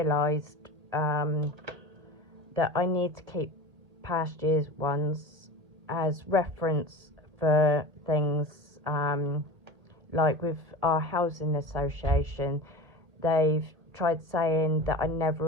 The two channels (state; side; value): late; left; 1.7 ms